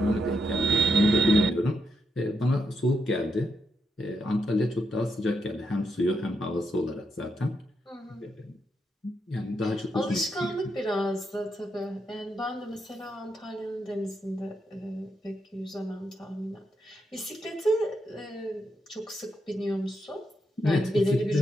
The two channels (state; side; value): normal; both; correlation 0.82